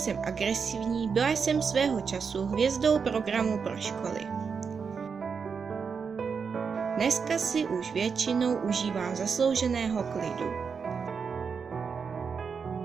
agresivní, byla jsem svého času hvězdou programu pro školy. Dneska si už většinou užívám zaslouženého klidu.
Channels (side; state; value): left; quieter; 5.9 dB